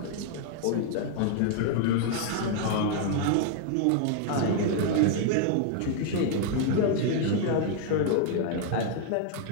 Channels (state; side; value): different; both; correlation 0.00